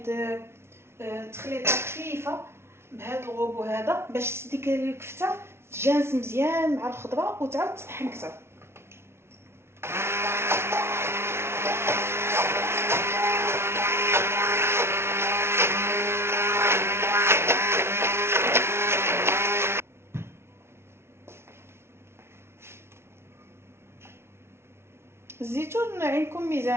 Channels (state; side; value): late; left; 0.12 ms